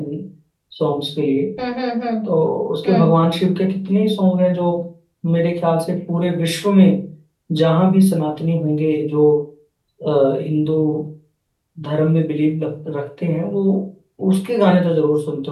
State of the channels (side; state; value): both; identical; correlation 1.00